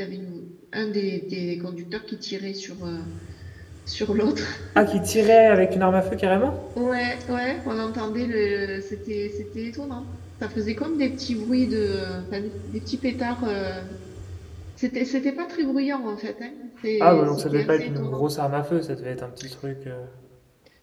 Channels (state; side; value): identical; both; correlation 1.00